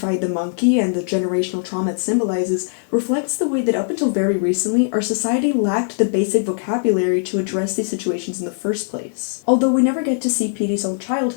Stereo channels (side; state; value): right; silent; digital silence